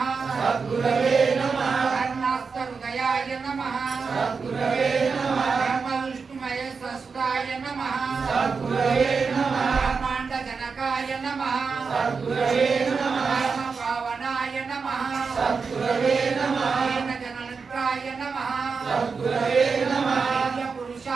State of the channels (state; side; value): quieter; left; 5.1 dB